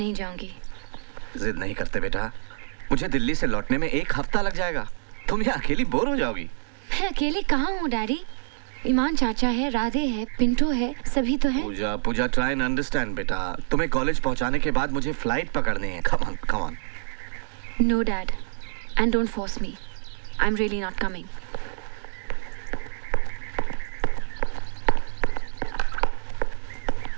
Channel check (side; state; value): left; silent; digital silence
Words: जाऊंगी। जिद नहीं करते बेटा, मुझे दिल्ली से लौटने में 1 हफ्ता लग जाएगा। तुम यहाँ अकेली बोर हो जाओगी। मैं अकेले कहाँ हूँ डैडी? ईमान चाचा है, राधे है, पिंटो है, सभी तो है। पूजा पूजा ट्राई एंड अंडरस्टैंड बेटा। तुम्हें कॉलेज पहुँचाने के बाद मुझे फ्लाइट पकड़नी है। Come on come on. No dad, and don't force me, I am really not coming.